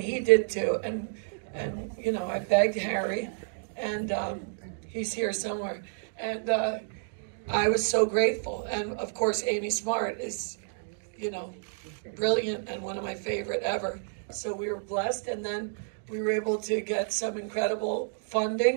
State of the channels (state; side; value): silent; left; digital silence